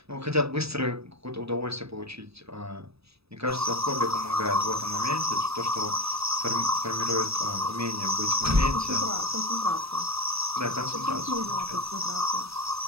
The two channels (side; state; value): left; late; 0.78 ms